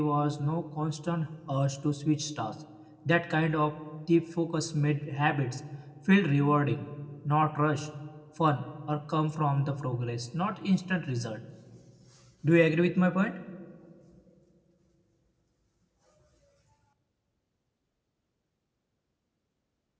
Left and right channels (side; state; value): both; identical; correlation 1.00